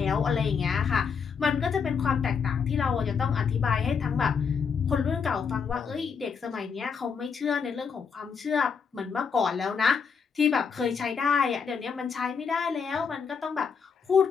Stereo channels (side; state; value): right; quieter; 6.1 dB